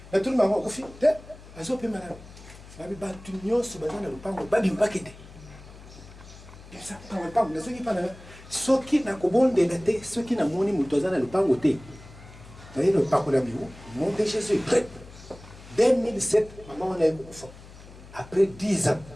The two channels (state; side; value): noise; left; hum, 19 dB below the sound